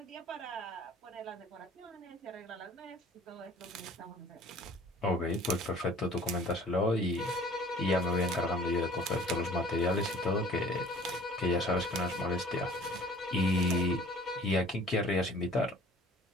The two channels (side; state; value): both; normal; correlation 0.50